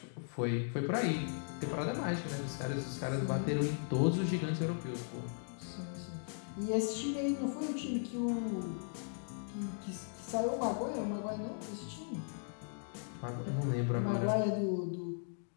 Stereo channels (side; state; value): right; silent; digital silence